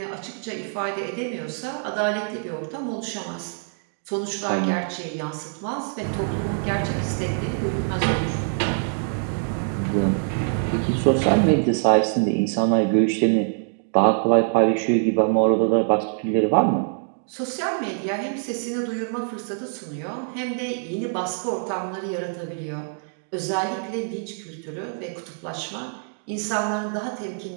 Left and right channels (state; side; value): silent; left; digital silence